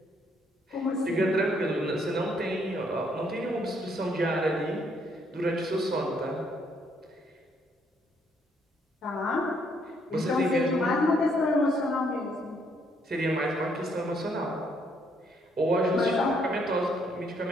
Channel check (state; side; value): normal; both; correlation 0.70